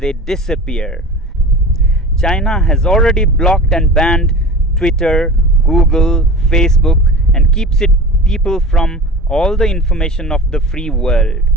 disappear. China has already blocked and banned Twitter, Google, Facebook, and keeps its people from all the information of the free world.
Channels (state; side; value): normal; both; correlation 0.35